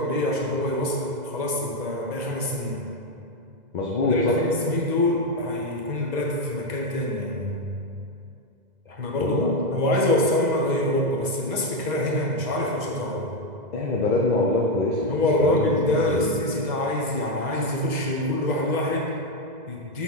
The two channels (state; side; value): late; left; 2.0 ms